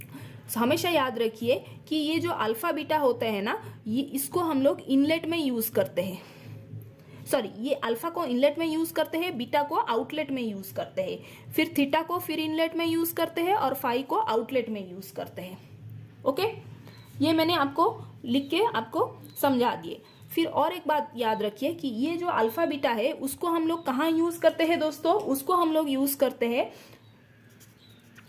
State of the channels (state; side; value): identical; both; correlation 1.00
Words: हमेशा याद रखिए कि ये जो अल्फा बीटा होते हैं ना, ये इसको हम लोग इनलेट में यूज करते हैं, सॉरी, ये अल्फा को इनलेट में यूज करते हैं, बीटा को आउटलेट में यूज करते हैं, फिर थीटा को फिर इनलेट में यूज करते हैं, और फाई को आउटलेट में यूज करते हैं। ओके, ये मैंने आपको लिख के आपको समझा दिए। फिर और एक बात याद रखिए कि ये जो अल्फा बीटा है उसको हम लोग कहाँ यूज करते हैं दोस्तों, उसको हम लोग यूज करते हैं